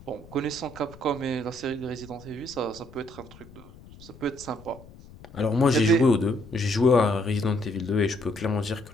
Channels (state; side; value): noise; left; rumble, 20 dB below the sound